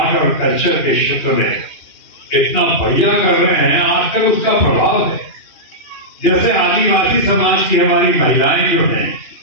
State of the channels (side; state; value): right; late; 2.5 ms